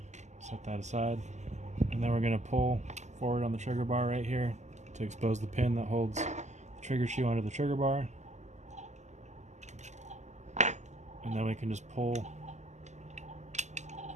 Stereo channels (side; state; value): left; late; 0.33 ms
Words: Set that aside. And then we're going to pull forward on the trigger bar right here to expose the pin that holds the trigger shoe onto the trigger bar. And then we can just pull